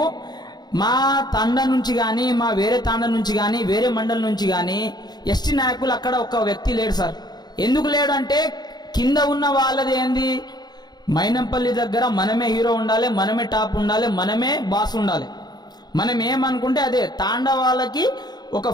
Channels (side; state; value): right; late; 0.20 ms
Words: మా తాండా నుంచి కానీ మా వేరే తాండా నుంచి కానీ వేరే మండలం నుంచి కానీ ఎస్టీ నాయకులు అక్కడ ఒక వ్యక్తి లేడు సార్. ఎందుకు లేడు అంటే కింద ఉన్న వాళ్ళది ఏంది, మైనంపల్లి దగ్గర మనమే హీరో ఉండాలి, మనమే టాప్ ఉండాలి, మనమే బాస్ ఉండాలి. మనం ఏమనుకుంటే అదే. తాండా వాళ్ళకి ఒక